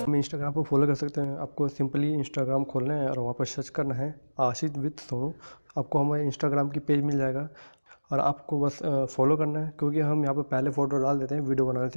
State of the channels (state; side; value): inverted; both; correlation -1.00